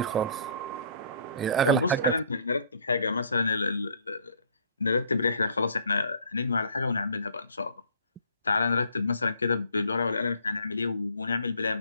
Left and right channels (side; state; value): both; inverted; correlation -0.56